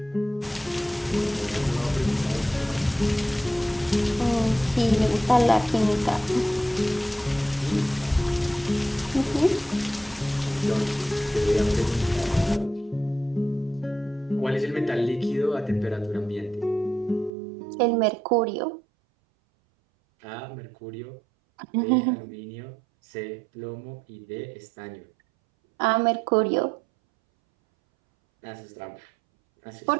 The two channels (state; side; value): drops out; left; at 17.3 s